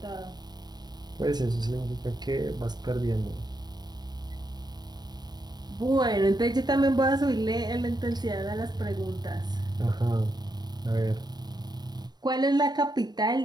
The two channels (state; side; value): late; left; 0.20 ms